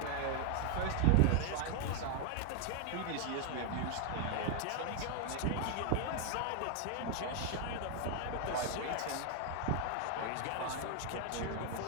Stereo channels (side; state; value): both; different; correlation 0.00